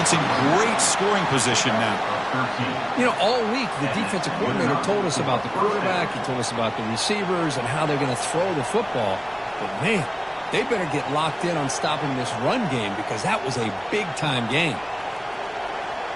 in great scoring position now. You know, all week the defensive coordinator told us about the quarterback. He told us about the receivers and how they're going to throw the football. But, man, they better get locked in on stopping this run game because that was a big-time game.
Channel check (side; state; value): both; identical; correlation 1.00